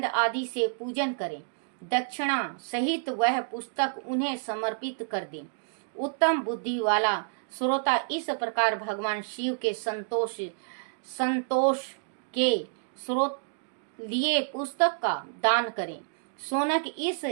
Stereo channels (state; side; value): silent; left; digital silence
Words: आदि से पूजन करें। दक्षिणा सहित वह पुस्तक उन्हें समर्पित कर दें। उत्तम बुद्धि वाला श्रोता इस प्रकार भगवान शिव के संतोष के स्रोत लिए पुस्तक का दान करें। शौनक इस